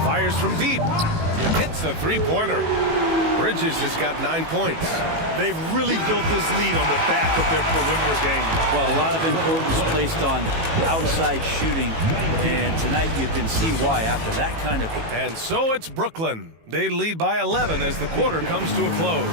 Fires from deep. Hits a three-pointer. Bridges has got 9 points. They've really built this lead on the back of their perimeter game. Well, a lot of importance placed on outside shooting, and tonight you can see why after that kind of... And so it's Brooklyn. They lead by 11 as the quarter comes to a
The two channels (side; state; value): left; late; 18 ms